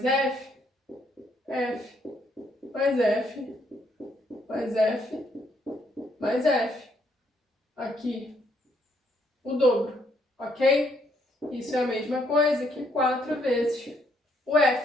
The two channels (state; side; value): normal; both; correlation 0.71